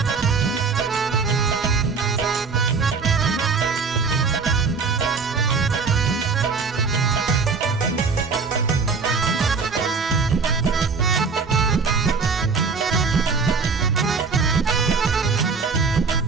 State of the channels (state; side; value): quieter; left; 5.0 dB